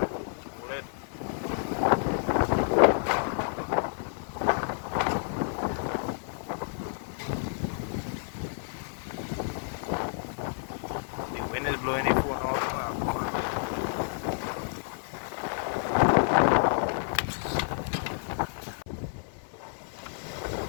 The wind is blowing the phone all over.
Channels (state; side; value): silent; right; 58 dB below the other